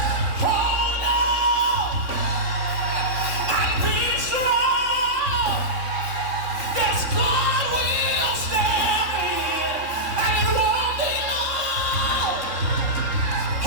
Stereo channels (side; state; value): left; late; 3.7 ms